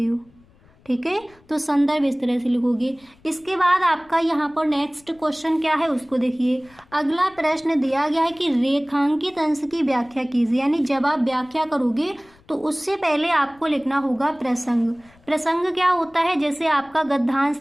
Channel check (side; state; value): left; noise; rumble, 29 dB below the sound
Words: हो, ठीक है। तो संदर्भ इस तरह से लिखोगे। इसके बाद आपका यहाँ पर नेक्स्ट क्वेश्चन क्या है उसको देखिए। अगला प्रश्न दिया गया है कि रेखांकित अंश की व्याख्या कीजिए, यानी जब आप व्याख्या करोगे तो उससे पहले आपको लिखना होगा प्रसंग। प्रसंग क्या होता है, जैसे आपका गद्यांश